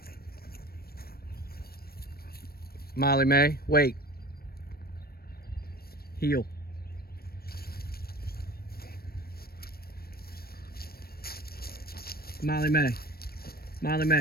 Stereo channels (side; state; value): right; late; 0.44 ms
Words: Molly Mae, wait. Heel. Molly Mae. Molly